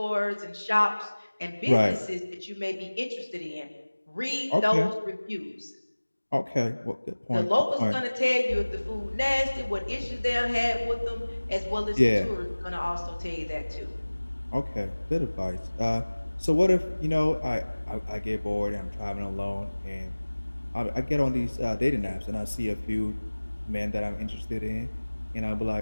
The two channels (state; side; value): inverted; both; correlation -1.00